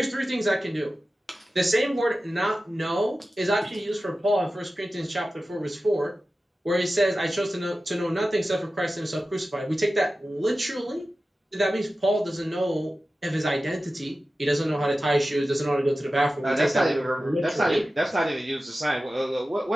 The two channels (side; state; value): both; normal; correlation 0.94